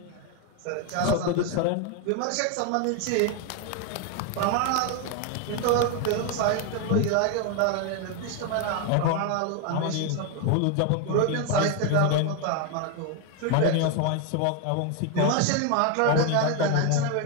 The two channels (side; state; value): both; different; correlation 0.01